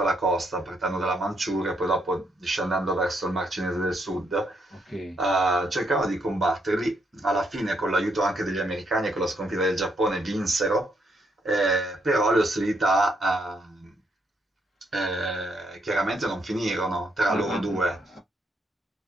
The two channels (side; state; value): both; normal; correlation 0.75